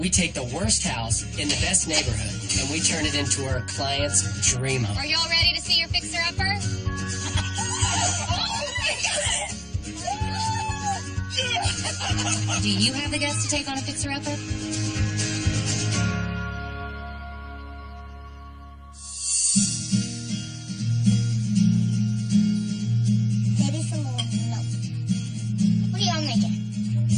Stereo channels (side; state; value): both; identical; correlation 1.00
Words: take the worst house in the best neighborhood, and we turn it into our client's dream home. Are y'all ready to see your fixer-upper? Do you have the guts to take on a fixer-upper? Maybe some more milk. What are y'all making?